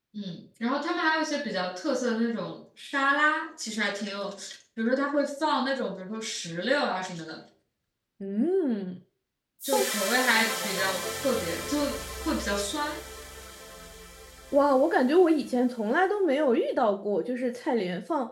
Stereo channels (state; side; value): identical; both; correlation 1.00